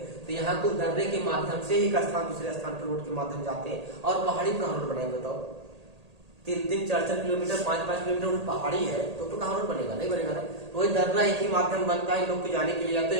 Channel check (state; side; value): late; left; 1.8 ms